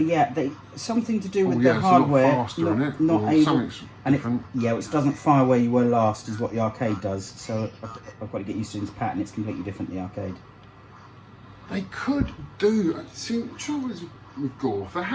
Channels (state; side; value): identical; both; correlation 1.00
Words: Yeah, something to do with yeah, the it's hardware. A lot faster, isn't it? Not or able, something's and different. it doesn't fire where you were last, is what the arcade does. So I've got to get used to this pattern. It's completely different the arcade. They could do. See, the trouble is with Gorf, they